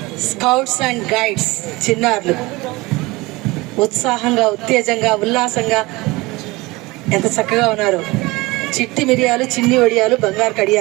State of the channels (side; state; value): left; quieter; 22.2 dB